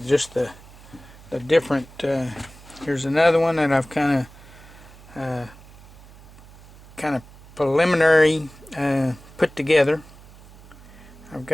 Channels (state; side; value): noise; right; hum, 21 dB below the sound